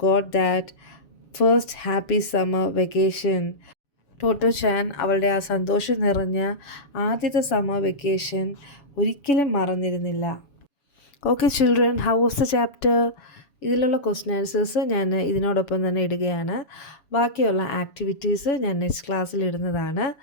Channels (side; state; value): right; late; 7.1 ms